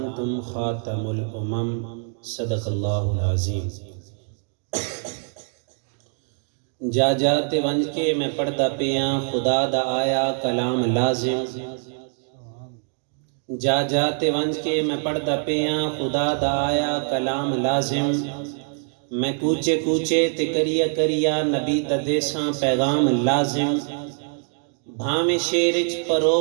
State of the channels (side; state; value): left; silent; 56 dB below the other